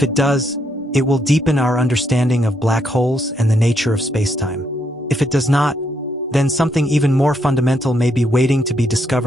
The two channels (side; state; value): both; normal; correlation 0.75